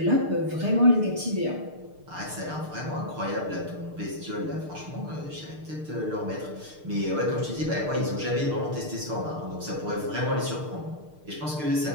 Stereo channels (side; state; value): left; late; 6.6 ms